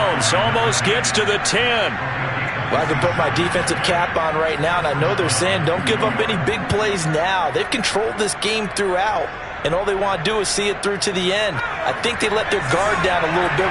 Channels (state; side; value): identical; both; correlation 1.00